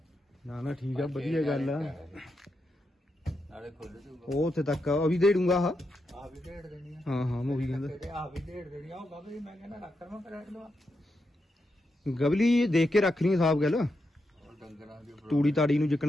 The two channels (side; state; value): both; normal; correlation 0.85